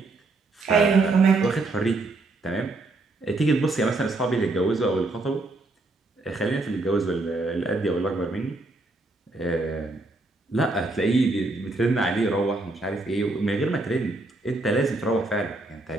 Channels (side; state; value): left; quieter; 3.1 dB